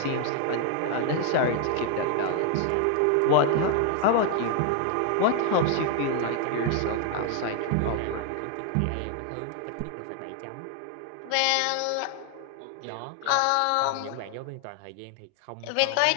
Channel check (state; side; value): different; both; correlation 0.00